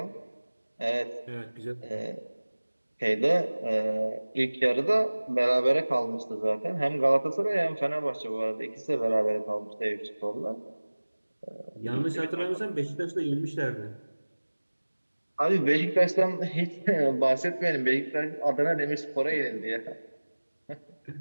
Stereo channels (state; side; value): inverted; both; correlation -1.00